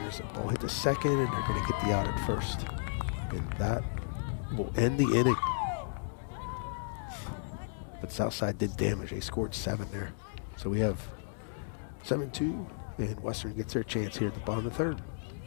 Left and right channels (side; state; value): right; silent; digital silence